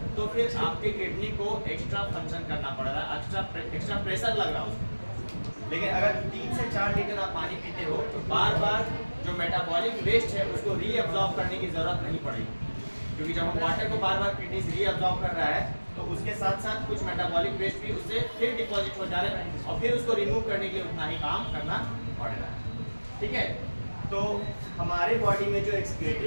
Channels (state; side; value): inverted; both; correlation -1.00